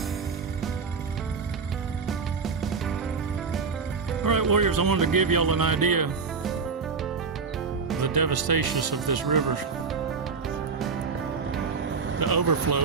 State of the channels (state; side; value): quieter; left; 5.2 dB